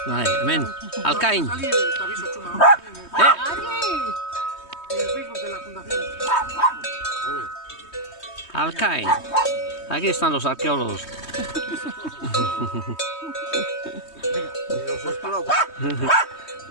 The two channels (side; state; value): right; late; 3.2 ms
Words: Vale, ven. Alcaín. Salir, te aviso, Chuma. En el Facebook de la fundación. Alcaín. Aquí están los arqueólogos. Y los he esperado.